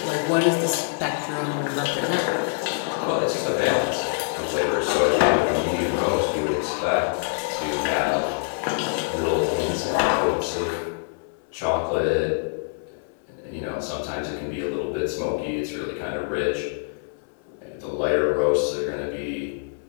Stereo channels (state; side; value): silent; right; digital silence